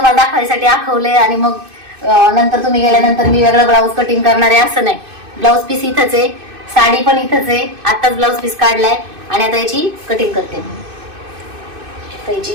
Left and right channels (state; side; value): late; left; 2.6 ms